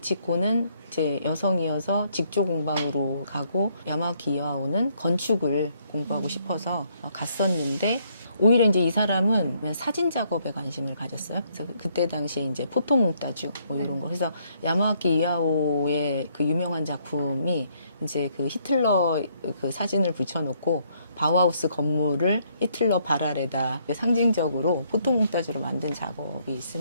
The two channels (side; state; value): both; inverted; correlation -0.70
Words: 이제 여성이어서 직조 공방으로 가고 야마와키 이와오는 건축을 공부하고 싶어서 갔었는데 오히려 이제 이 사람은 사진 작업에 관심을 가졌어요. 그래서 그때 당시에 이제 포토몽따주 뭐 이런 거. 그래서 야마와키 이와오의 그 유명한 작품이 이제 그 히틀러 그 사진을 붙여놓고 바우하우스 건물을 히틀러 발 아래다 상징적으로 포토몽따주로 만든 작업이